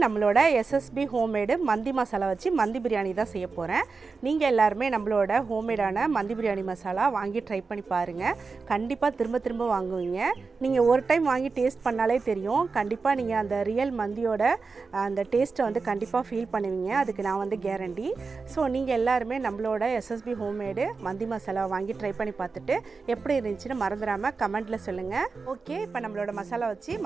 நம்மளோட SSB homemade மந்தி மசாலா வச்சு மந்தி பிரியாணி தான் செய்ய போறேன். நீங்க எல்லாரும் நம்மளோட ஹோம்மேடான மந்தி பிரியாணி மசாலா வாங்கி ட்ரை பண்ணி பாருங்க. கண்டிப்பா திரும்ப வாங்குவீங்க. நீங்க ஒரு டைம் வாங்கி டேஸ்ட் பண்ணாலே தெரியும். கண்டிப்பா நீங்க அந்த ரியல் மந்தியோட அந்த டேஸ்ட்டை வந்து கண்டிப்பா ஃபீல் பண்ணுவீங்க. அதுக்கு நான் வந்து கேரண்டி. சோ நீங்க எல்லாரும் நம்மளோட SSB ஹோம்மேட் மந்தி மசாலா வாங்கி ட்ரை பண்ணி பார்த்துட்டு எப்படி இருந்துச்சுன்னு மறந்துடாம கமெண்ட்ல சொல்லுங்க. ஓகே, இப்போ நம்மளோட மசாலா வச்சு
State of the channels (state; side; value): quieter; left; 4.5 dB